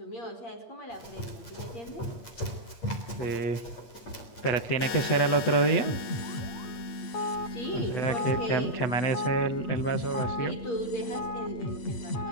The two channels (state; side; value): late; right; 8.6 ms